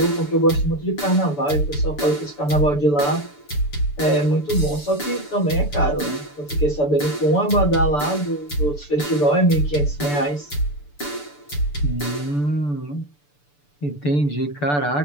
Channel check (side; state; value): right; late; 6.9 ms